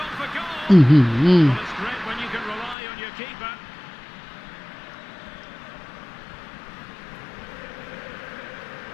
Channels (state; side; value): drops out; right; at 2.8 s